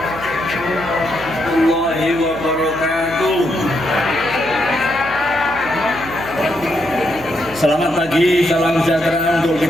Selamat pagi, salam sejahtera untuk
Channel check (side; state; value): left; noise; hum, 19 dB below the sound